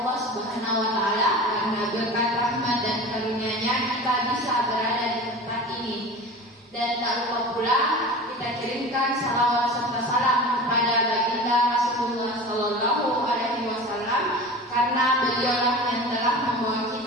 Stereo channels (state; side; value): normal; both; correlation 0.34